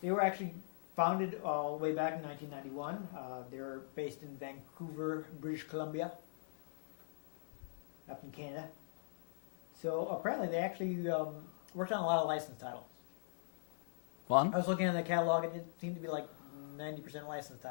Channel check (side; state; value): right; silent; digital silence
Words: They were actually founded all the way back in 1991. They're based in Vancouver, British Columbia, up in Canada. So apparently they actually worked on a lot of licensed titles. Fun. I was looking at the catalog, and it seemed to be like 90% licensed